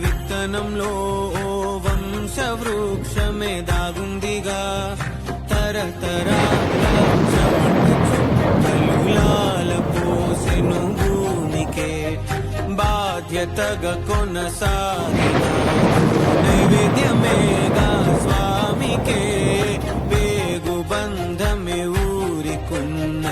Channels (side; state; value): both; identical; correlation 1.00